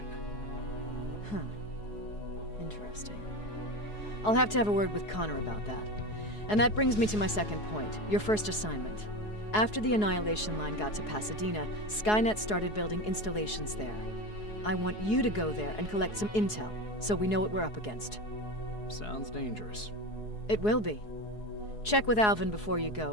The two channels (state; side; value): late; right; 4.7 ms